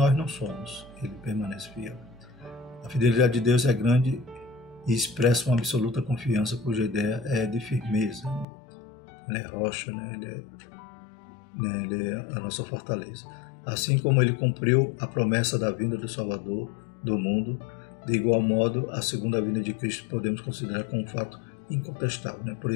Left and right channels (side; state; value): right; drops out; at 8.5 s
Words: não somos, Ele permanece fiel. A fidelidade de Deus é grande e expressa uma absoluta confiança, cuja ideia é de firmeza. Ele é rocha, Ele é a nossa fortaleza. Assim como Ele cumpriu a promessa da vinda do Salvador do mundo, de igual modo, a segunda vinda de Cristo podemos considerar como um fato incontestável. Por